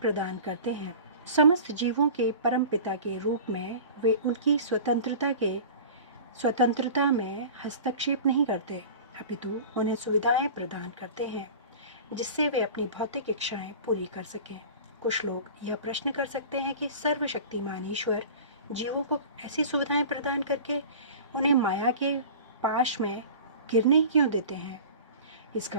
करते हैं। समस्त जीवों के परम पिता के रूप में वे उनकी स्वतंत्रता में हस्तक्षेप नहीं करते, अपितु उन्हें सुविधाएं प्रदान करते हैं जिससे वे अपनी भौतिक इच्छाएं पूरी कर सकें। कुछ लोग यह प्रश्न कर सकते हैं कि सर्वशक्तिमान ईश्वर जीवों को ऐसी सुविधाएं प्रदान करके उन्हें माया के पाश में गिरने ही क्यों देते हैं?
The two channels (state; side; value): inverted; both; correlation -0.38